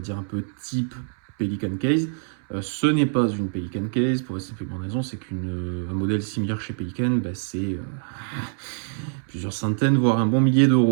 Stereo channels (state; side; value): silent; left; 62 dB below the other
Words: dire, un peu type Pelican Case. Ce n'est pas une Pelican Case, pour la simple bonne raison, c'est qu'un modèle similaire chez Pelican, c'est plusieurs centaines, voire un bon millier